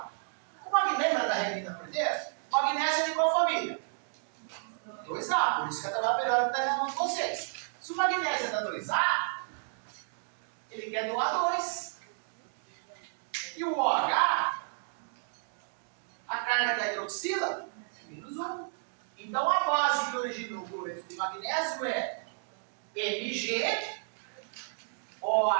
O magnésio da Regina Cordeiro, magnésio é de qual família? 2A, por isso que a tabela periódica está na mão de vocês. Se o magnésio é da 2A, ele quer doar 2. E o OH, a carga da hidroxila, é menos 1. Então a base que originou o cloreto de magnésio é Mg,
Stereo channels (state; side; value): silent; left; digital silence